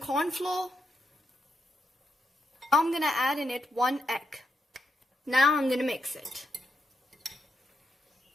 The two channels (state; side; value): normal; both; correlation 0.83